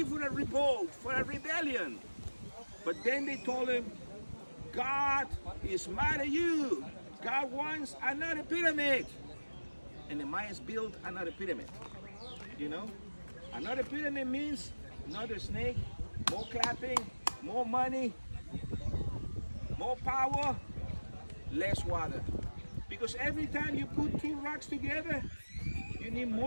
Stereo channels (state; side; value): inverted; both; correlation -1.00